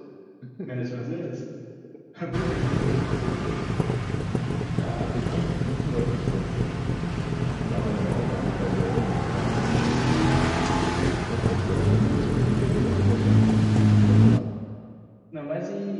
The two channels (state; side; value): identical; both; correlation 1.00